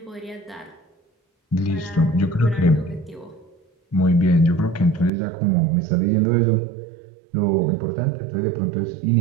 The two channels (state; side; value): drops out; left; at 5.1 s